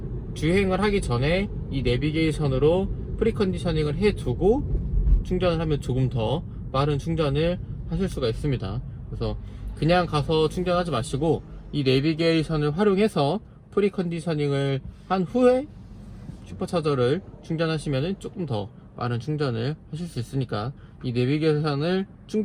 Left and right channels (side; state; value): both; identical; correlation 1.00